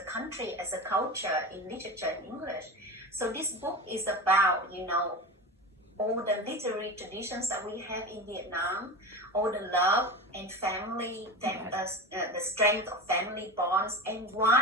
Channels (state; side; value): normal; both; correlation 0.27